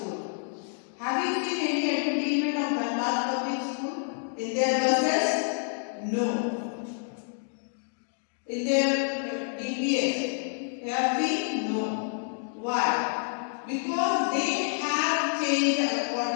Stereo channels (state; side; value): silent; right; 59 dB below the other